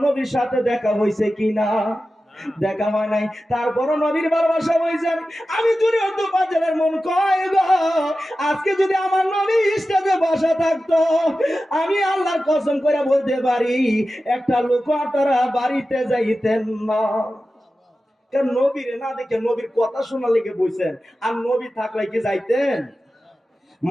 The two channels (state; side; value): normal; both; correlation 0.94